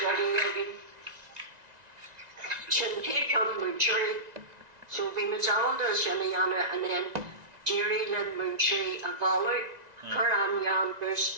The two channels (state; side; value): late; left; 1.9 ms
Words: ready. Shin take on Múinteoir, so we Mazalda Shaniana and then Jerry Lynn Múinteoir a Bhaile, Curan Yan